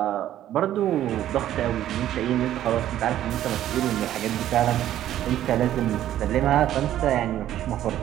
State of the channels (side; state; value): left; quieter; 12.2 dB